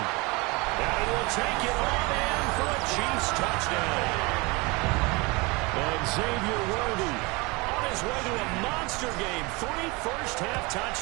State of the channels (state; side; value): quieter; left; 26.3 dB